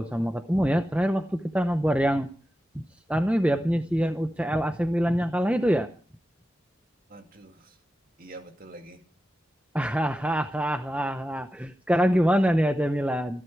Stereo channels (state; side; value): normal; both; correlation 0.92